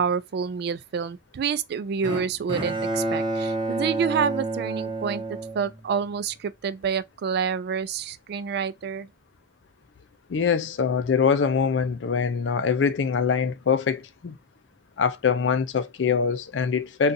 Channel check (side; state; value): both; normal; correlation 0.07